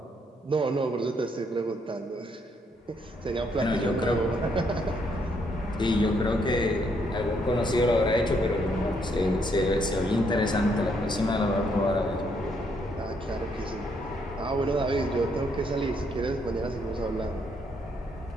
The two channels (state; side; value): normal; both; correlation 0.72